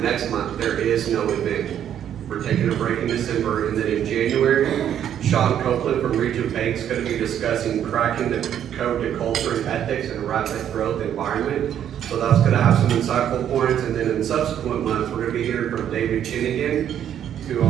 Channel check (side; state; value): left; quieter; 9.9 dB